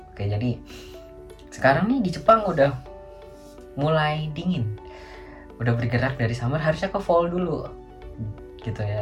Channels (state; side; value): identical; both; correlation 1.00